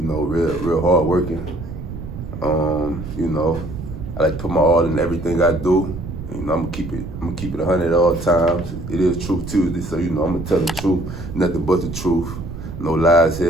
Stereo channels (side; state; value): right; noise; rumble, 9 dB below the sound